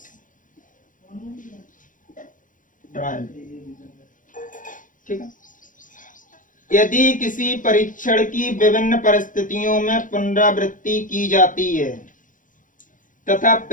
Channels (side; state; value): right; late; 0.38 ms